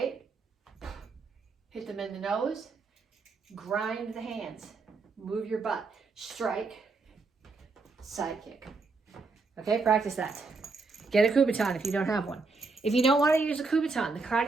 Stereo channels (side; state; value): left; quieter; 4.0 dB